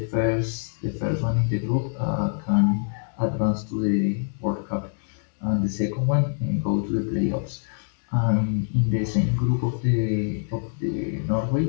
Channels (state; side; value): silent; right; digital silence